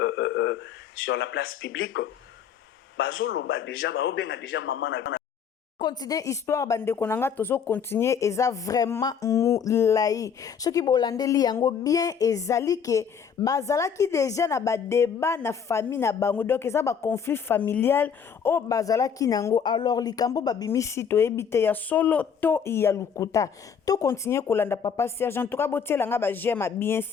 sur la place publique bazolo ba déjà ba obenga déjà maman na continuer histoire bandeko nanga tozo continuer eza vraiment moulayi soki bolandeli yango bien ezali ke bazalaki déjà na ba débat na famille na bango donc eza ba conflit familial o bazalaki nango alors likambo babimisi toyebi te ya solo to ya lukuta to continuer kolanda papa Serge en tout cas botielanga ba j'aime bien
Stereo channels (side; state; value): right; quieter; 7.1 dB